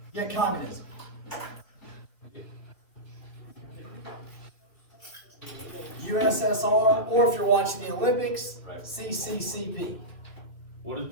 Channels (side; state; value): right; late; 2.5 ms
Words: Yeah, communism. USSR, or if you're watching the Olympics, CCCP. What is